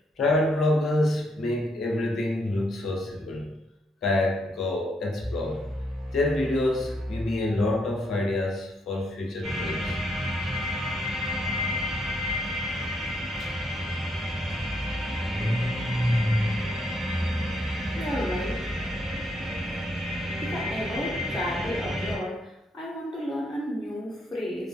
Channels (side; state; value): both; normal; correlation 0.75